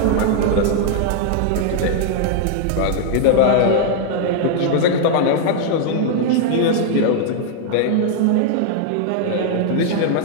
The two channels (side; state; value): both; different; correlation 0.00